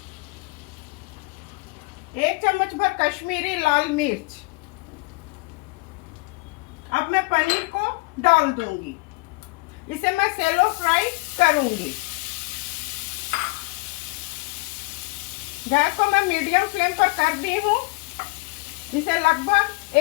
1 चम्मच भर कश्मीरी लाल मिर्च। अब मैं पनीर को डाल दूंगी। इसे मैं सेलो फ्राई करूंगी। गैस को मैं मीडियम फ्लेम पर कर दी हूँ। इसे लगभग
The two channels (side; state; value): right; quieter; 26.8 dB